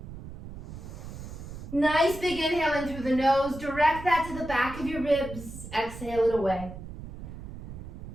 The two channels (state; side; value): noise; right; rumble, 11 dB below the sound